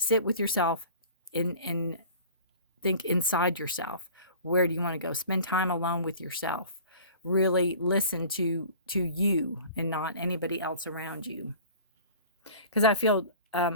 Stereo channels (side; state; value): both; inverted; correlation -0.44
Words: with yourself and think inside yourself. Where do you want to go? Spend time alone with yourself. Really listen to you and not anybody else around you. Because I feel,